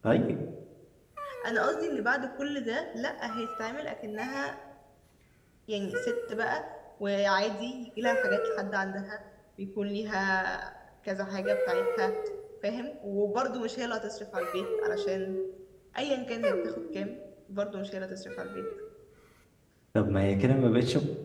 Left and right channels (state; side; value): identical; both; correlation 1.00